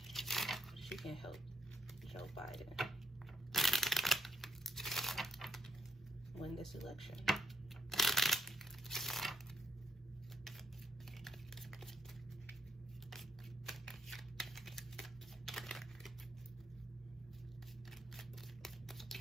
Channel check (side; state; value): both; normal; correlation 0.77